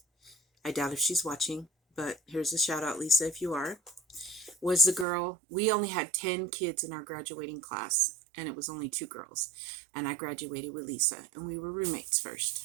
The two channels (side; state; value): left; drops out; at 5.1 s